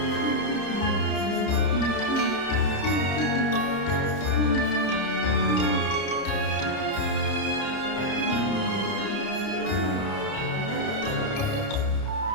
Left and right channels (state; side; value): late; right; 30 ms